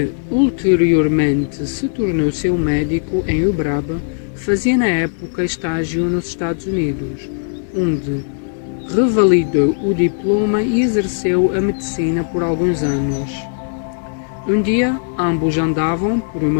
ulteriormente se tornou seu médico em Uberaba. Fazia na época estágio nos Estados Unidos, onde revalidou o diploma e exerceu a medicina por alguns anos. Um dia, ambos andavam por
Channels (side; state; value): right; silent; digital silence